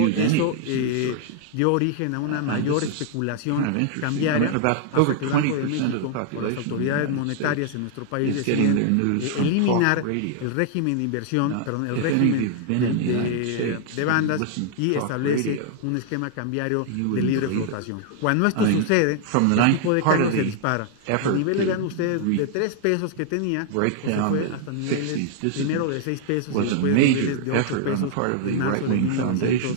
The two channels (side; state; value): both; different; correlation 0.00